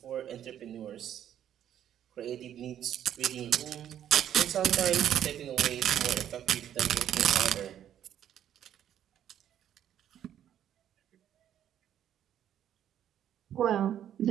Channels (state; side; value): quieter; left; 10.5 dB